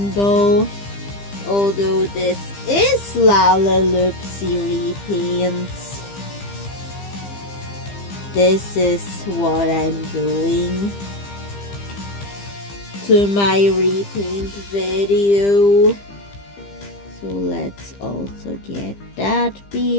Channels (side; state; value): right; late; 15 ms